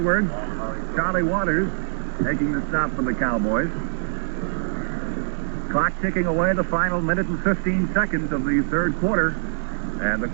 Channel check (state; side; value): silent; left; digital silence